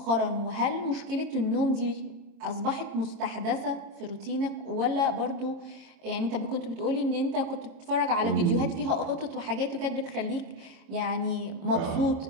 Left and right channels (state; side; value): late; left; 26 ms